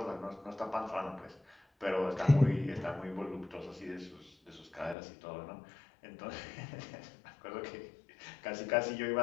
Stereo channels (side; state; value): right; drops out; at 5.0 s